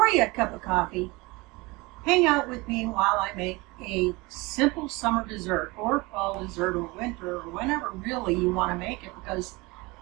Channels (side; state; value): left; quieter; 24.1 dB